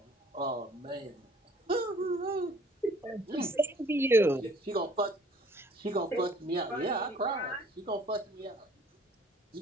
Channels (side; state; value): both; normal; correlation 0.56